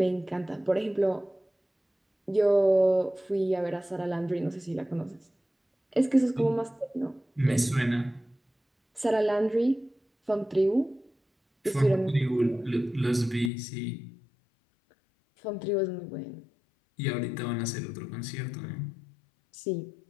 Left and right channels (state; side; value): drops out; right; at 13.5 s